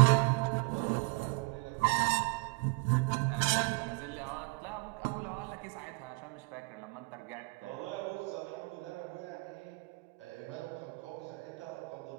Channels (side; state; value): left; quieter; 29.9 dB